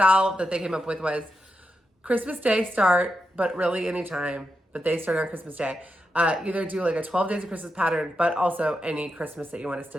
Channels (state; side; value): normal; both; correlation 0.87